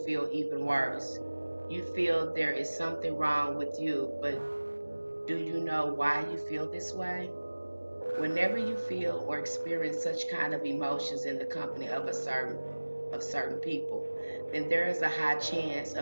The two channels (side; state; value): both; inverted; correlation -1.00